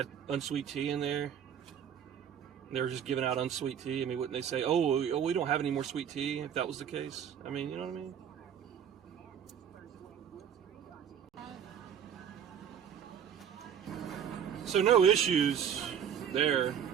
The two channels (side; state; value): left; quieter; 8.6 dB